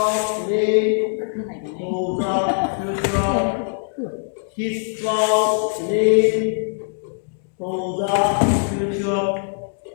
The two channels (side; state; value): right; silent; digital silence